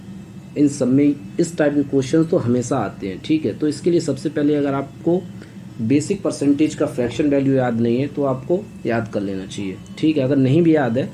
इन सब में इस टाइप के क्वेश्चन तो हमेशा आते हैं। ठीक है, तो इसके लिए सबसे पहले अगर आपको बेसिक परसेंटेज का फ्रैक्शन वैल्यू याद नहीं है तो आपको याद कर लेना चाहिए। ठीक है, अगर नहीं भी याद है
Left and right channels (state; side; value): identical; both; correlation 1.00